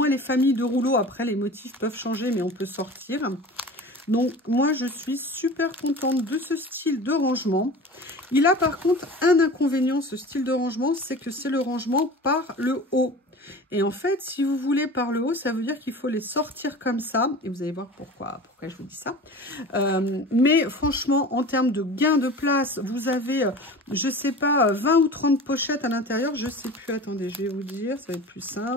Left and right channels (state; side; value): normal; both; correlation 0.36